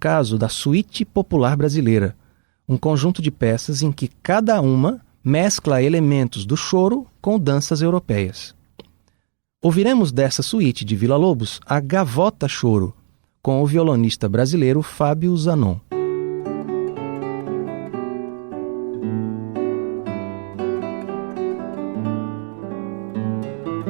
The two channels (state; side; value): silent; left; 57 dB below the other